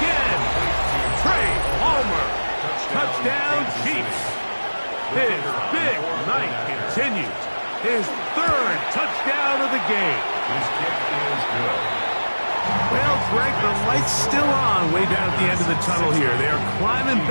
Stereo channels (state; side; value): inverted; both; correlation -1.00